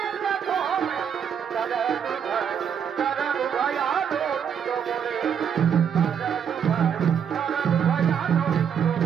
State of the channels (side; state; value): left; quieter; 7.9 dB